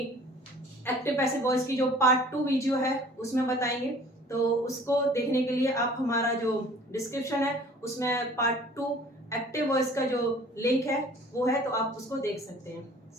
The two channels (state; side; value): normal; both; correlation 0.50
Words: एक्टिव पैसिव वॉइस की जो पार्ट 2 वीडियो है उसमें बताएंगे। तो उसको देखने के लिए आप हमारा जो डिस्क्रिप्शन है उसमें पार्ट 2 एक्टिव वॉइस का जो लिंक है वो है, तो आप उसको देख सकते हैं।